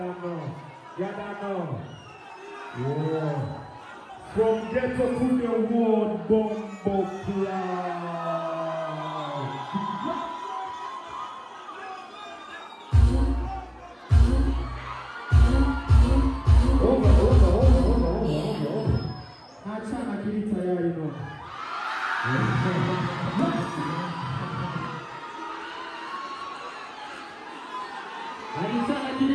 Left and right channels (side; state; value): both; identical; correlation 1.00